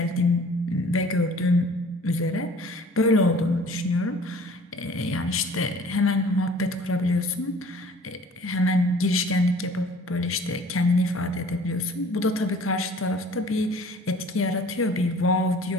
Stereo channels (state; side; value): normal; both; correlation 0.50